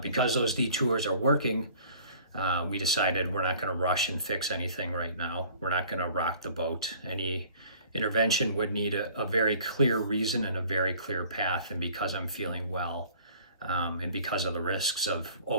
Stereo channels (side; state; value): both; inverted; correlation -0.51